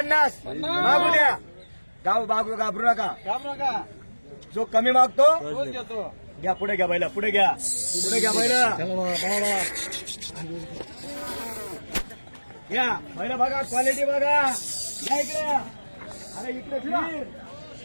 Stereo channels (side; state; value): both; inverted; correlation -1.00